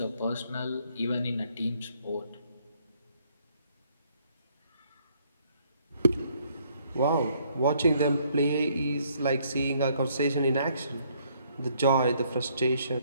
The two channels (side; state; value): both; inverted; correlation -0.67